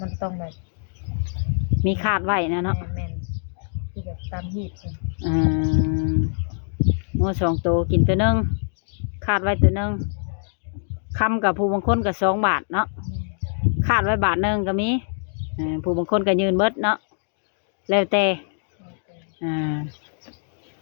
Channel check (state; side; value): silent; right; digital silence